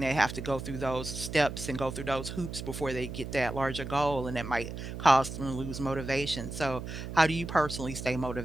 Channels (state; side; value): noise; right; hum, 8 dB below the sound